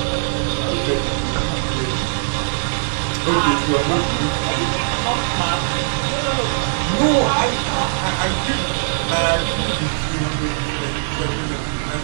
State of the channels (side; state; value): left; silent; 66 dB below the other